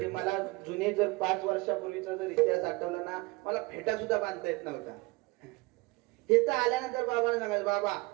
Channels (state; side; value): quieter; left; 23.8 dB